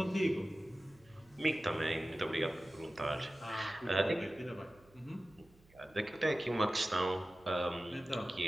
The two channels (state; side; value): noise; right; hum, 28 dB below the sound